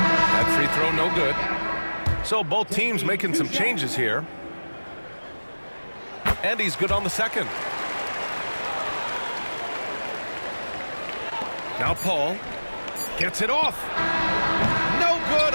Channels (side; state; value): both; inverted; correlation -1.00